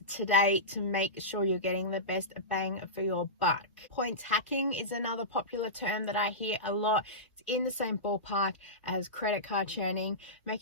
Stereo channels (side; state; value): both; normal; correlation -0.18